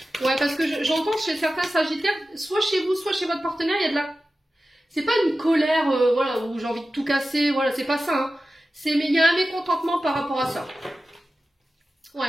Ouais, parce que j'entends chez certains Sagittaires, soit chez vous, soit chez votre partenaire, il y a de la... C'est pas une colère, voilà, où j'ai envie de tout casser, voilà, c'est pas ça. Hein. Mais il y a un mécontentement par rapport à ça.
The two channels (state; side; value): normal; both; correlation 0.94